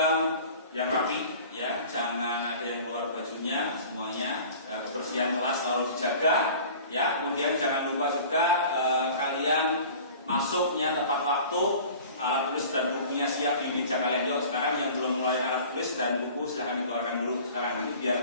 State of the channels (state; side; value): inverted; both; correlation -0.43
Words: yang rapi ya, jangan ada yang keluar bajunya, semuanya kebersihan kelas selalu dijaga. Ya, kemudian jangan lupa juga kalian masuknya tepat waktu, alat tulis dan bukunya siap di meja kalian. Yuk, sekarang yang belum mulai alat tulis dan buku silahkan dikeluarkan dulu sekarang, nanti biar